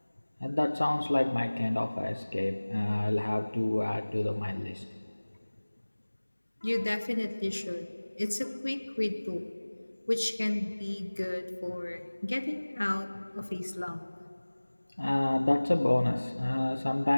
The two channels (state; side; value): inverted; both; correlation -1.00